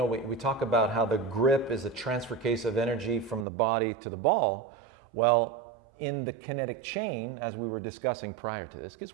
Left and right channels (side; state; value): left; drops out; at 3.5 s